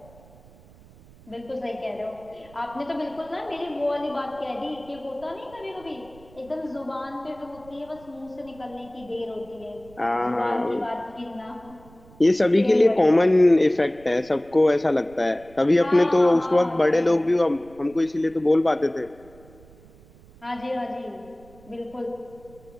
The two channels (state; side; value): noise; right; rumble, 24 dB below the sound